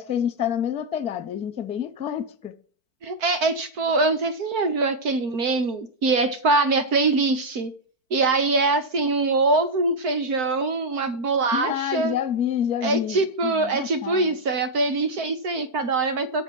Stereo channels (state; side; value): late; left; 4.5 ms